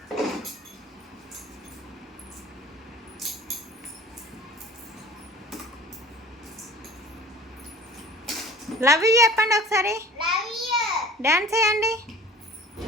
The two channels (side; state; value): both; normal; correlation 0.45